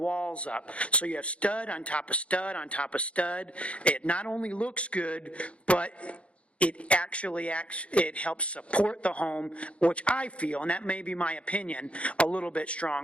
up. So you have stud on top of stud on top of stud. It not only looks good, but it actually it helps support the home, which I feel, and that may be my opinion, a little bit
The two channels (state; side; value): late; right; 0.061 ms